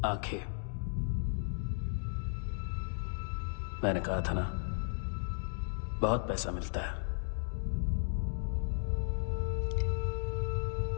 आंखें, मैंने कहा था ना, बहुत पैसा मिलता है।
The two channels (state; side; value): silent; right; digital silence